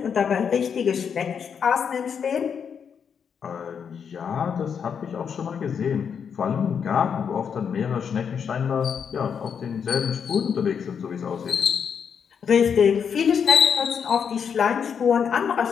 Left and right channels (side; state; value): right; quieter; 7.1 dB